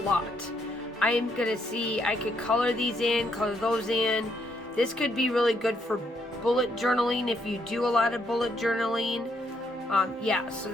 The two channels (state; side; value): normal; both; correlation 0.74